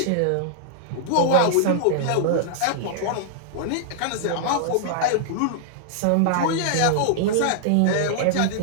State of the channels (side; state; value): both; different; correlation -0.01